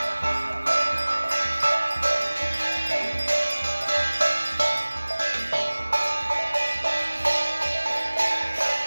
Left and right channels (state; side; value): inverted; both; correlation -1.00